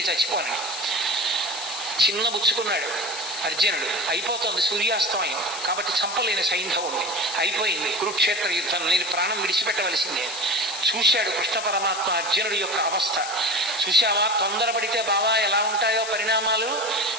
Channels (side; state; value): left; noise; hiss, 8 dB below the sound